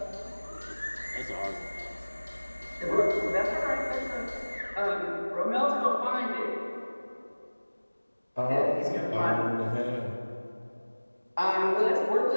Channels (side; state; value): both; inverted; correlation -1.00